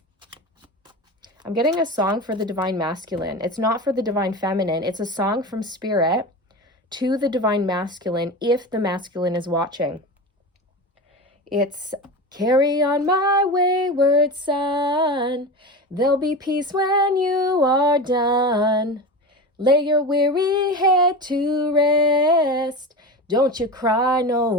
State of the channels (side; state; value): both; normal; correlation 0.26